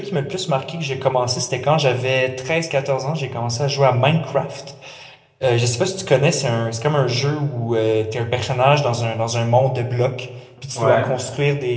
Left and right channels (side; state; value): both; identical; correlation 1.00